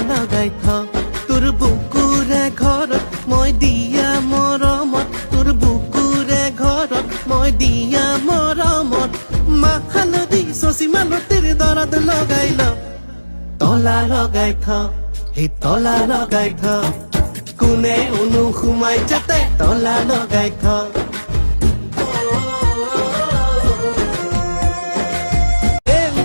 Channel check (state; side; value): inverted; both; correlation -1.00